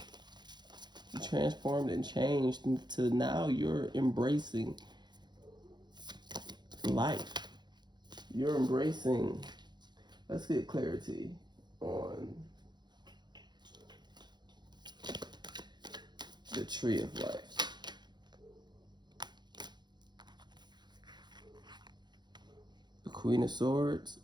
You transformed and changed into now you're embracing life. You're embracing. Let's get clarity on the tree of life. The Queen of Swords.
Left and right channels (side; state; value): left; late; 0.21 ms